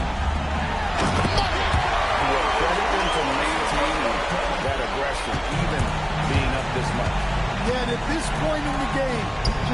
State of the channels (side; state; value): both; identical; correlation 1.00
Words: Well, credit them for maintaining that aggression, even being up this much. Yeah, and at this point in the game,